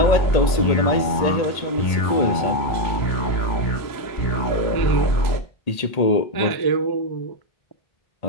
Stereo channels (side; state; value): right; late; 1.8 ms